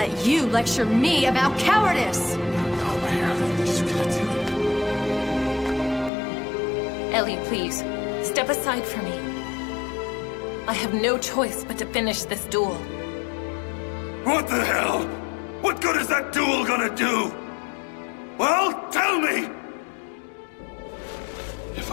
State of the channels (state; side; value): drops out; right; at 6.1 s